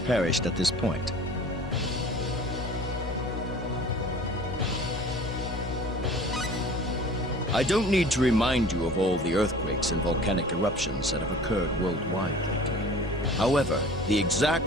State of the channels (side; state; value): both; normal; correlation 0.45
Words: perished at this point. I don't need to remind you of all the earthquakes and volcanic eruptions that have occurred worldwide lately. However, the